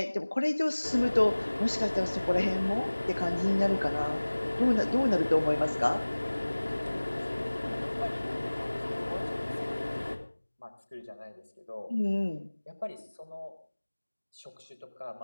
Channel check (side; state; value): both; inverted; correlation -1.00